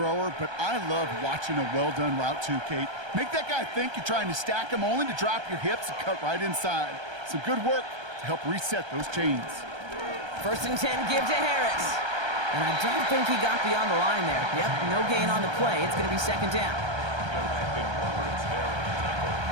but I love watching a well-done route too, Kate. Make that guy think you're trying to stack him only to drop your hips and cut right inside. Some good work to help reset those chains. 1st and 10 give to Harris. And I don't think he got beyond the line there. Yep, no gain on the play. It's going to be 2nd down.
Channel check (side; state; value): left; late; 1.3 ms